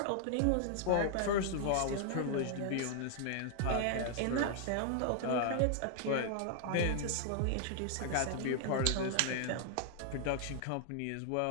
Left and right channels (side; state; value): both; different; correlation 0.00